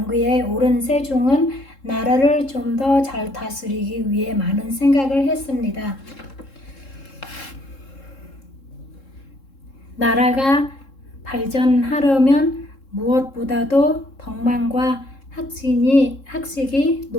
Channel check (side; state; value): right; late; 3.7 ms